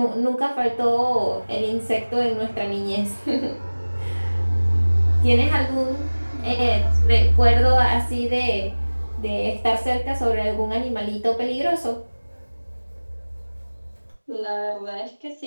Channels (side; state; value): both; inverted; correlation -1.00